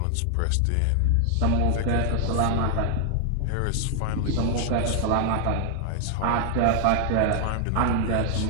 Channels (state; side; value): different; both; correlation 0.00